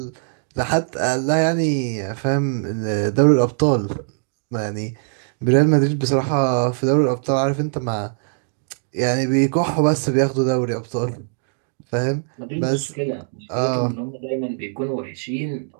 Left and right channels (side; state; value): left; silent; digital silence